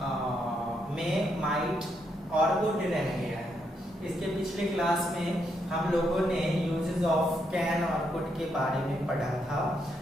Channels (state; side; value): normal; both; correlation 0.78